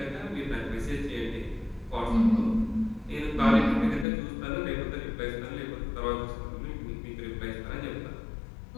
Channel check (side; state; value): right; drops out; at 4.0 s